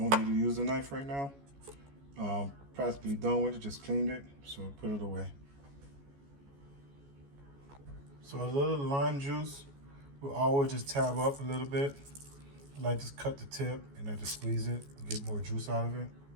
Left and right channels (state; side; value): late; left; 14 ms